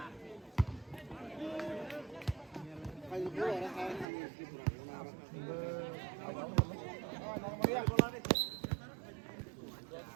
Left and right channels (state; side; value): drops out; left; at 4.0 s